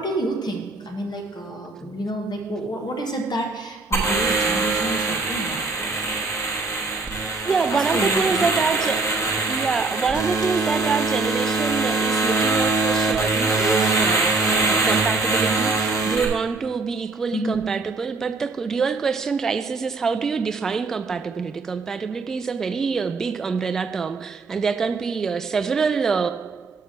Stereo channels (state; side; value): quieter; left; 3.7 dB